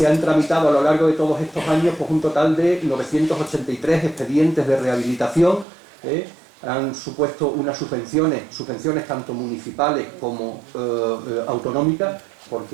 han tramitado a lo largo de todos estos años pues, un total de 983 expedientes de rehabilitación. Han supuesto unas subvenciones tanto municipales como autonómicas,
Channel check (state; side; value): drops out; left; at 5.7 s